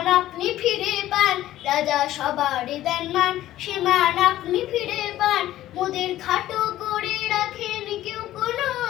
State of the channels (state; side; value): quieter; right; 14.1 dB